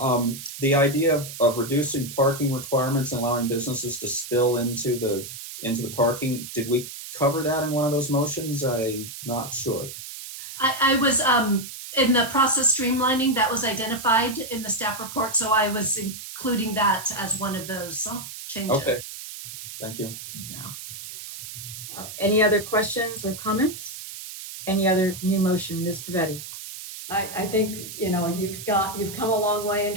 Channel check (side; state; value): right; noise; hiss, 11 dB below the sound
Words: The idea of reducing parking requirements and allowing businesses to spill into the parking, did we cover that in one of those motions? I'm not sure. I was in the process streamlining that was identified in the staff report, so I was including that as one of those changes. Okay, thank you. Yeah. Any other questions or comments? Any other new motion, Ms. Pavetti? I think, you know, you've come a long way in